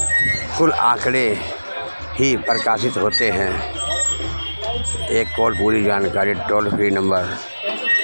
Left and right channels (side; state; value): both; inverted; correlation -1.00